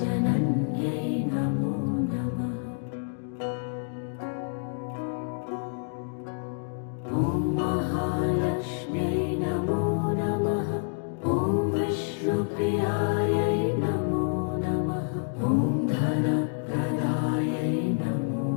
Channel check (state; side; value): silent; right; digital silence